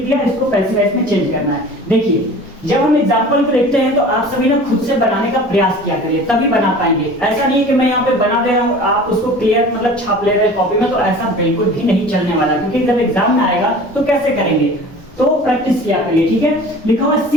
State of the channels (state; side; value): normal; both; correlation 0.41